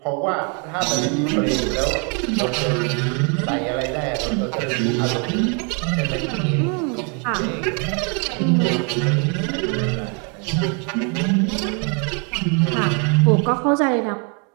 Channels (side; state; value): left; quieter; 36.3 dB